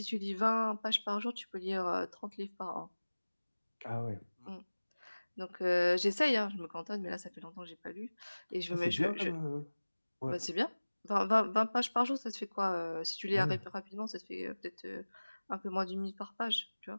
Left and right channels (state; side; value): inverted; both; correlation -1.00